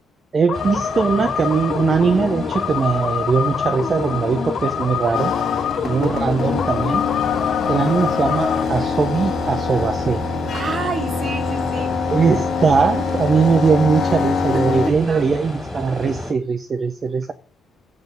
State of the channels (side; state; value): both; normal; correlation 0.78